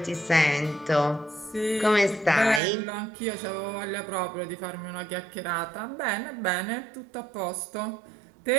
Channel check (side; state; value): left; drops out; at 2.6 s